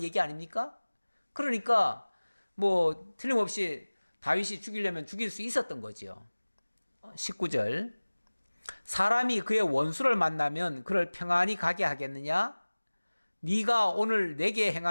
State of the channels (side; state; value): both; inverted; correlation -1.00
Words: 얘기 아닙니까? 그러니까 뭐 틀림없이 다윗이 죽이려면 죽일 수 있었던 거지요. 19절, 사람이 그의 원수를 만나면 그를 평안히 가게 하겠느냐? 네가 오늘 내게